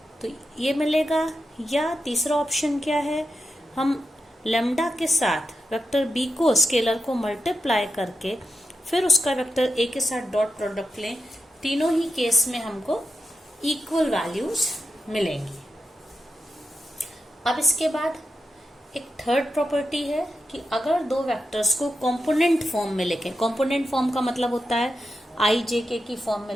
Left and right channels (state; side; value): normal; both; correlation 0.88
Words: तो ये मिलेगा। या तीसरा ऑप्शन क्या है? हम लैम्डा के साथ वेक्टर बी को, स्केलर को मल्टीप्लाई करके फिर उसका वेक्टर ए के साथ डॉट प्रोडक्ट लें। तीनों ही केस में हमको इक्वल वैल्यूज मिलेंगी। अब इसके बाद एक थर्ड प्रॉपर्टी है कि अगर दो वेक्टर्स को कंपोनेंट फॉर्म में लिखें। कंपोनेंट फॉर्म का मतलब होता है आई जे के की फॉर्म में